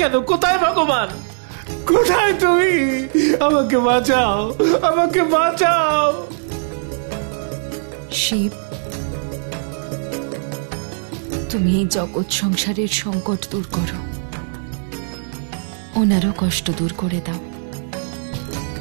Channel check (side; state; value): left; silent; digital silence